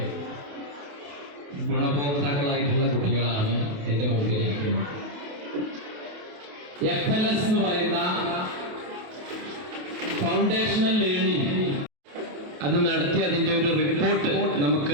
ഗുണഭോക്താക്കളായിട്ടുള്ള കുട്ടികളാണ് എൻ്റെ മുമ്പിൽ ഇരിക്കുന്നത്. FLS എന്ന് പറയുന്ന ഫൗണ്ടേഷണൽ ലേണിംഗ് അത് നടത്തി അതിൻ്റെ ഒരു റിപ്പോർട്ട്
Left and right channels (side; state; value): left; late; 28 ms